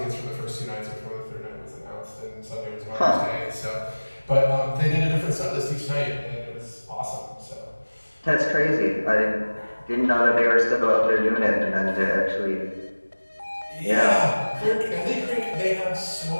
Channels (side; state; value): both; inverted; correlation -1.00